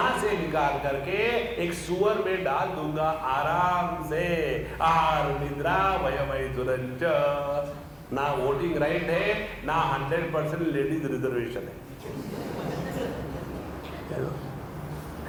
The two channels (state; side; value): identical; both; correlation 1.00